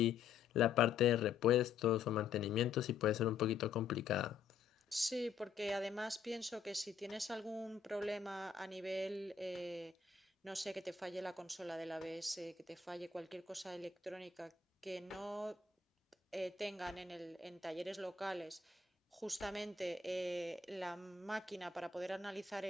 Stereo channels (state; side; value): quieter; right; 6.0 dB